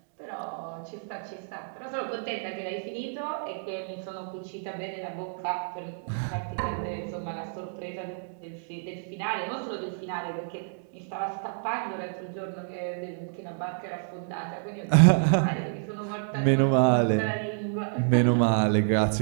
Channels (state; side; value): silent; left; digital silence